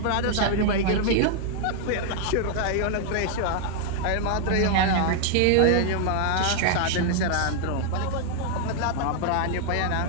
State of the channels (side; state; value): both; different; correlation 0.00